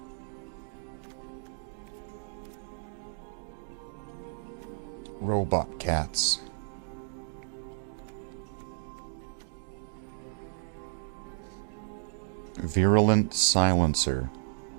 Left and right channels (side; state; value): left; silent; digital silence